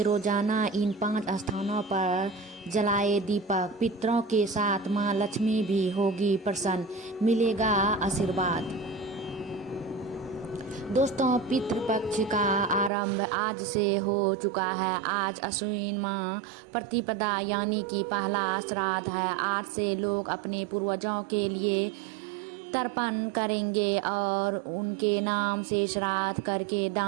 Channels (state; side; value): drops out; left; at 12.9 s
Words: रोजाना इन 5 स्थानों पर जलाए दीपक। पितरों के साथ माँ लक्ष्मी भी होगी प्रसन्न, मिलेगा आशीर्वाद। दोस्तों, पितृपक्ष का आरंभ आज से हो चुका है। आज अश्विन माह प्रतिपदा यानी कि पहला श्राद्ध है। आज से लोग अपने पूर्वजों के लिए तर्पण करेंगे और उनके नाम से श्राद्ध करके